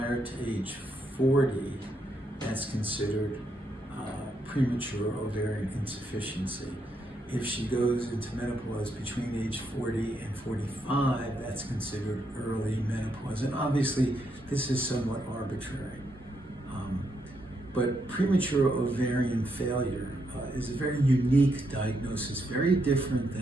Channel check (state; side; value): normal; both; correlation 0.78